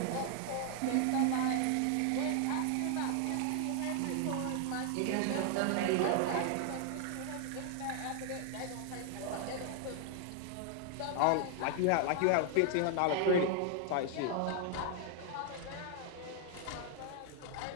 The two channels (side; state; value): both; different; correlation 0.00